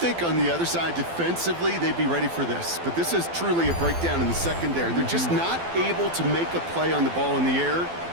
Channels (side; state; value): left; late; 12 ms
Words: on the other side, defensively, they'd be ready for this. But this is truly a breakdown in the secondary. They're just not able to make a play on the ball in the air.